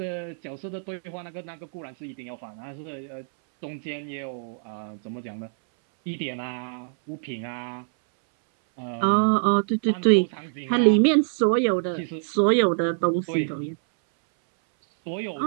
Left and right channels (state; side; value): silent; left; 61 dB below the other